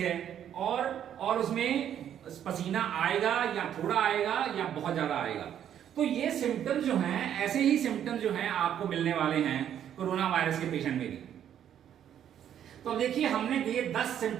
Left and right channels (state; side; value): quieter; left; 9.9 dB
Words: और उसमें पसीना आएगा या थोड़ा आएगा या बहुत ज्यादा आएगा। तो ये सिम्टम्स जो हैं, ऐसे ही सिम्टम्स जो हैं आपको मिलने वाले हैं कोरोना वायरस के पेशेंट में भी। तो देखिए, हमने ये 10